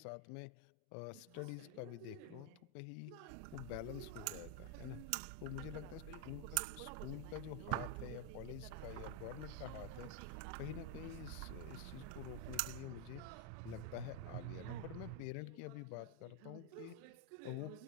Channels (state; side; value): different; both; correlation 0.01